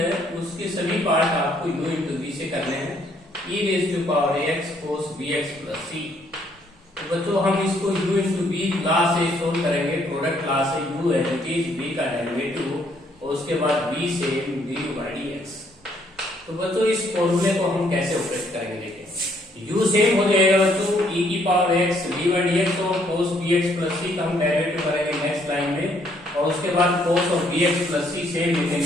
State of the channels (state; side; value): normal; both; correlation 0.68